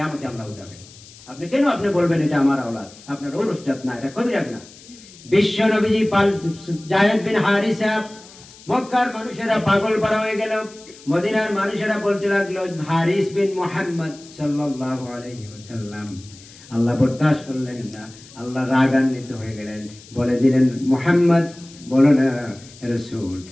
আল্লাহ উঠাবে। আপনি কেন আপনি বলবেন এটা আমার আওলাদ? আপনার ঔরসজাত না, এটা কবিরা গুনাহ। বিশ্ব নবীজি যায়েদ বিন হারিসা, মক্কার মানুষেরা পাগল পারা হয়ে গেল। মদিনার মানুষেরা বলতে লাগলো হারিস বিন মুহাম্মদ সাল্লাল্লাহু আলাইহি ওয়াসাল্লাম। আল্লাহ বরদাস্ত করলেন না, আল্লাহ রাগান্বিত হয়ে গেলেন, বলে দিলেন মুহাম্মদ বলো না রাসূল,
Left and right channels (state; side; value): noise; left; hiss, 21 dB below the sound